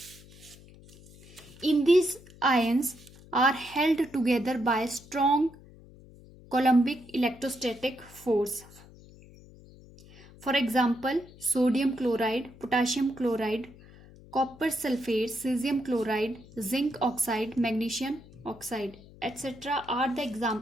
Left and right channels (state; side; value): noise; left; hum, 22 dB below the sound